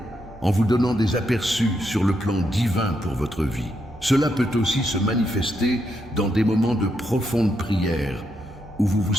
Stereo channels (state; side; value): noise; right; hum, 21 dB below the sound